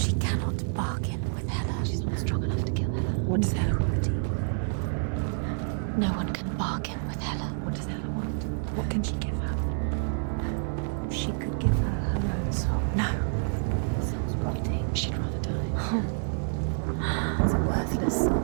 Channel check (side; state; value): left; silent; 59 dB below the other